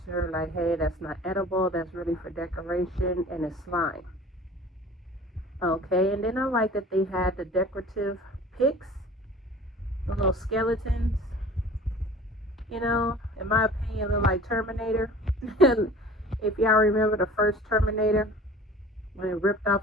like, hey, that's not edible, that's really for decoration, and it's slime. Okay, and then I like that they had the decorative picks, the little skeletons. In my opinion, look like Terminator. And if y'all remember the first Terminator, when it ripped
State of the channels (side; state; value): both; normal; correlation 0.44